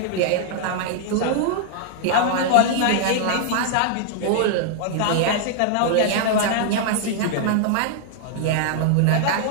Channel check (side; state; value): both; different; correlation -0.01